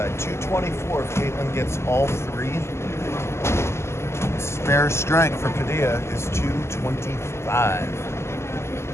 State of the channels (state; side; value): late; right; 0.13 ms